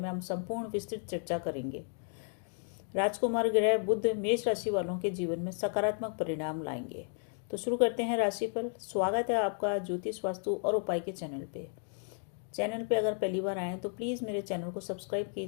हम संपूर्ण विस्तृत चर्चा करेंगे। राजकुमार ग्रह बुध मेष राशि वालों के जीवन में सकारात्मक परिणाम लाएंगे। तो शुरू करते हैं राशिफल। स्वागत है आपका ज्योतिष वास्तु और उपाय के चैनल पे। चैनल पे अगर पहली बार आए तो प्लीज़ मेरे चैनल को सब्सक्राइब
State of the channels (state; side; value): silent; right; 56 dB below the other